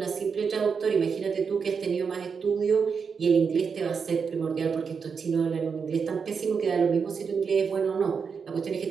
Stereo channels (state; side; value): quieter; left; 5.9 dB